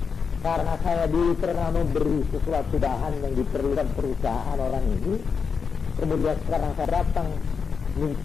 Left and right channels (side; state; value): right; quieter; 5.8 dB